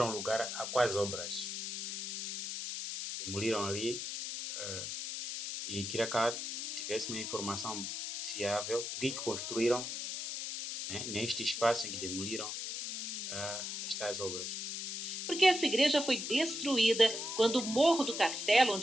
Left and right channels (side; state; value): left; noise; hiss, 4 dB below the sound